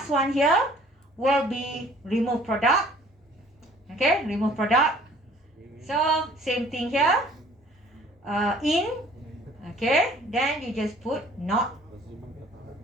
one here will be remove product. Okay, remove product. So same thing here. In, okay, then you just put not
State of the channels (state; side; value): normal; both; correlation 0.55